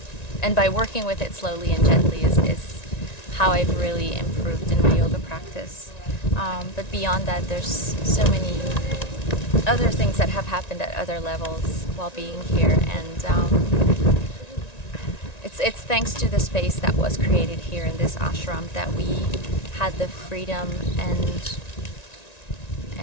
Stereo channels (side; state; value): right; late; 1.9 ms